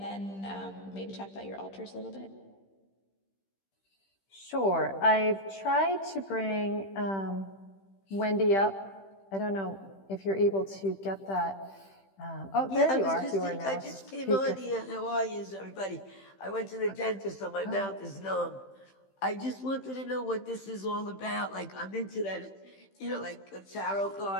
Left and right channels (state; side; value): late; right; 15 ms